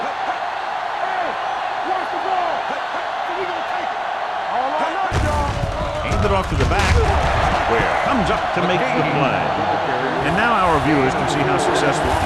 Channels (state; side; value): identical; both; correlation 1.00